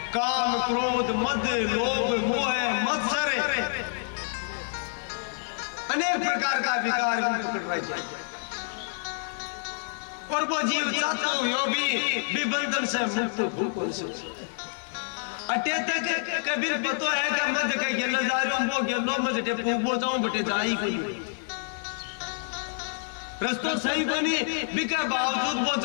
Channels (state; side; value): silent; right; 60 dB below the other